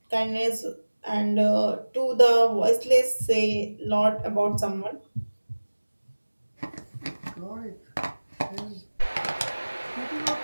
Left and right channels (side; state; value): both; inverted; correlation -1.00